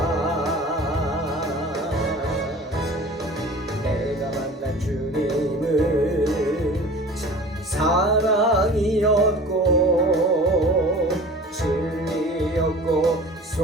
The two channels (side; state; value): both; normal; correlation 0.41